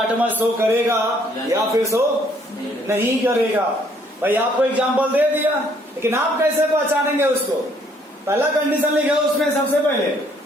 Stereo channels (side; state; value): both; normal; correlation 0.65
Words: शो करेगा या फिर शो नहीं करेगा। भाई आपको एग्जांपल दे दिया, लेकिन आप कैसे पहचानेंगे उसको। पहला कंडीशन लिखा उसमें सबसे पहले